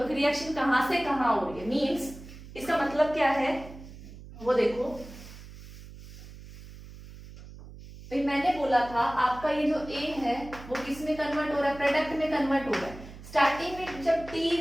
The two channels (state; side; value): noise; right; hum, 16 dB below the sound